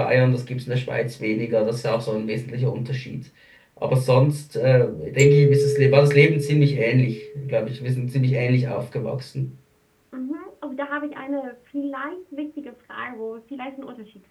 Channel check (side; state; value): both; identical; correlation 1.00